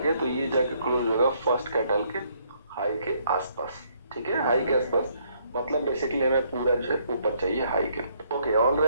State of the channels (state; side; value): inverted; both; correlation -0.69